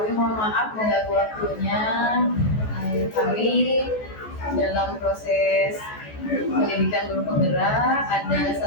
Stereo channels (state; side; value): late; right; 14 ms